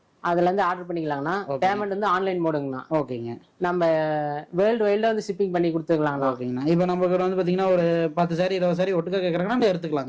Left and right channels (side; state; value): both; identical; correlation 1.00